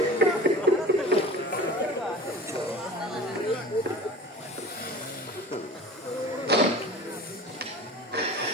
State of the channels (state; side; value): normal; both; correlation 0.38